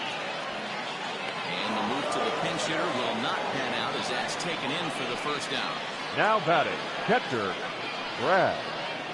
And the move to the pinch hitter will not pan out as that's taken in for the first down. Now batting, catcher, Brad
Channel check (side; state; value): both; identical; correlation 1.00